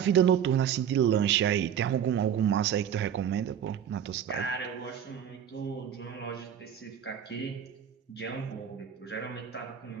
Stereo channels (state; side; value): quieter; left; 8.9 dB